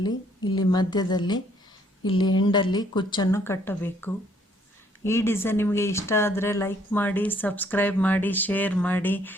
ಇಲ್ಲಿ ಮಧ್ಯದಲ್ಲಿ, ಇಲ್ಲಿ ಎಂಡಲ್ಲಿ ಕುಚ್ಚನ್ನು ಕಟ್ಟಬೇಕು. ಈ ಡಿಸೈನ್ ನಿಮಗೆ ಇಷ್ಟ ಆದರೆ ಲೈಕ್ ಮಾಡಿ, ಸಬ್ಸ್ಕ್ರೈಬ್ ಮಾಡಿ, ಶೇರ್ ಮಾಡಿ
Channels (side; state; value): both; normal; correlation 0.65